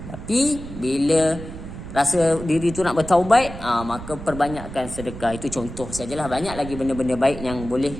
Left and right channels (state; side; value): noise; right; rumble, 11 dB below the sound